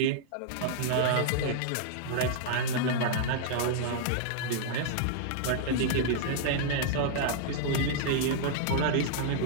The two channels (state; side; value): different; both; correlation -0.01